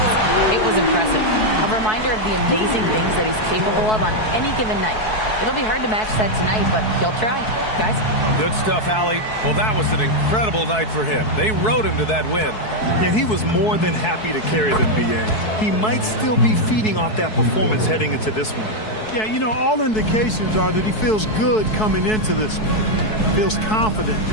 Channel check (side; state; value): right; late; 4.6 ms